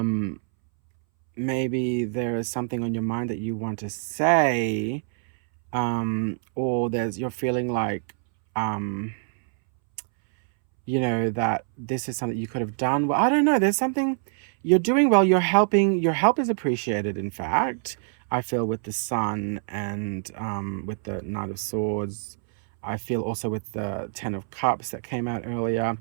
maybe there is something on your mind that you want to say, or you're feeling like, you know, that this is something you could have done well. I don't know, there's something you're doing well, you're helping, your help is appreciated, in fact. I feel with the Sun, and with the Knight of Swords. I feel also with the Ten of Cups that came out earlier.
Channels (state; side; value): silent; left; 61 dB below the other